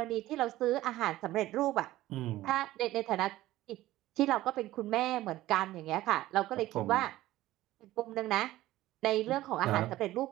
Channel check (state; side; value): quieter; left; 15.8 dB